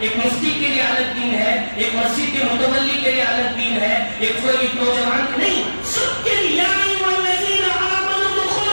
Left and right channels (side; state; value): both; inverted; correlation -1.00